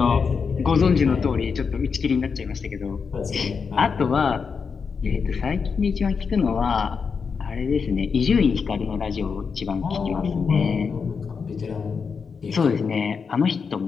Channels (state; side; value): quieter; right; 5.6 dB